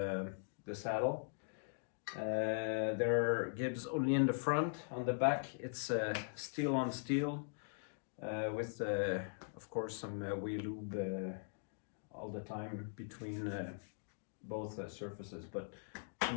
the saddle. They're gibs only in the front. On the back it's steel on steel with of course some wheel lube all the time between both surfaces, but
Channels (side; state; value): right; silent; digital silence